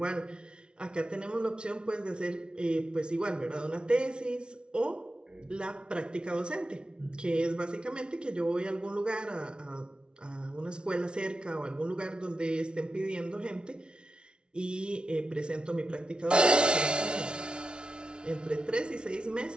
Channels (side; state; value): left; late; 0.056 ms